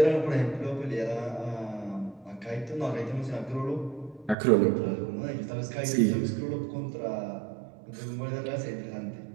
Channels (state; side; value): drops out; left; at 4.4 s